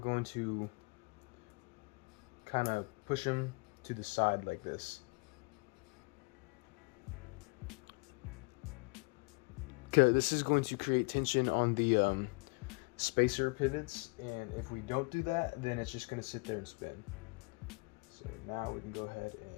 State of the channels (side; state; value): right; quieter; 30.3 dB